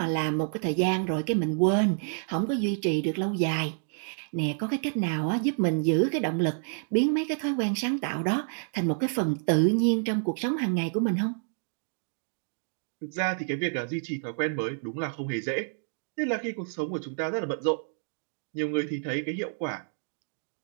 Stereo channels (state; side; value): silent; left; 59 dB below the other